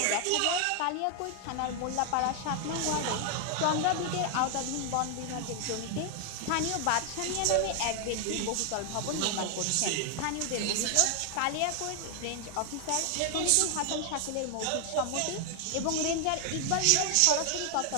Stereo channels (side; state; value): both; different; correlation 0.00